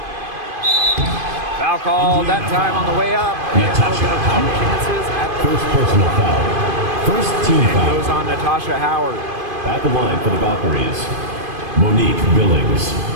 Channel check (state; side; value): late; left; 2.5 ms